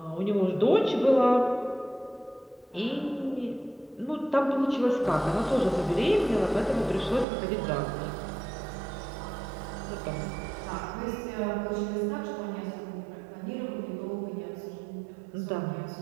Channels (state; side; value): drops out; left; at 7.2 s